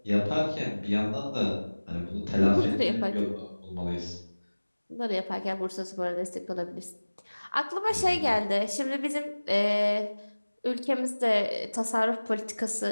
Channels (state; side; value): inverted; both; correlation -1.00